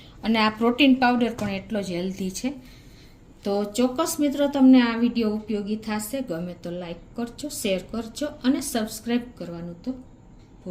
અને આ પ્રોટીન પાવડર પણ એટલો જ હેલ્ધી છે. તો ચોક્કસ મિત્રો તમને આ વિડીયો ઉપયોગી થશે. ગમે તો લાઈક કરજો, શેર કરજો અને સબસ્ક્રાઈબ કરવાનું તો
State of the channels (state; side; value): identical; both; correlation 1.00